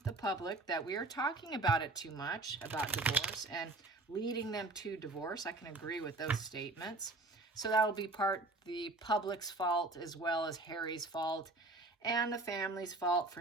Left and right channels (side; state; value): left; quieter; 3.1 dB